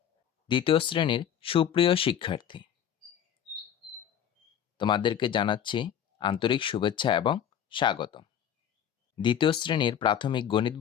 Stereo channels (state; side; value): quieter; right; 9.3 dB